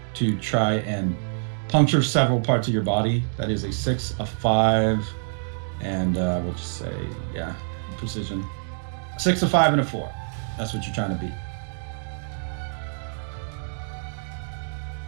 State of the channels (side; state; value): left; silent; digital silence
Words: to try and puncture several parts of your body. That is a 6, a 5, and we'll just say, yeah, precision. 6, a 5, and a 4. That's what you're trying to beat.